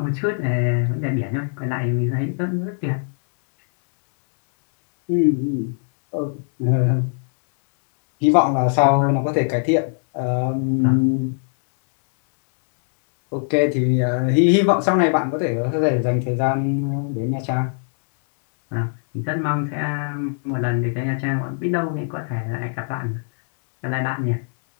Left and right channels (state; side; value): silent; right; 65 dB below the other